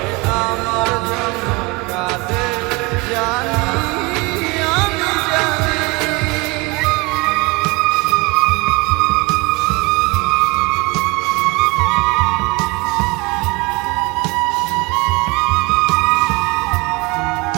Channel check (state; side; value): quieter; left; 26.0 dB